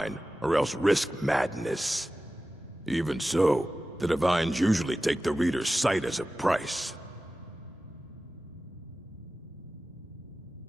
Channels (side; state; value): both; normal; correlation 0.95